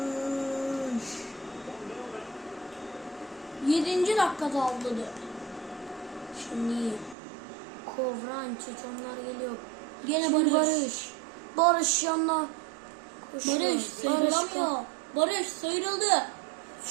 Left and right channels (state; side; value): drops out; left; at 7.2 s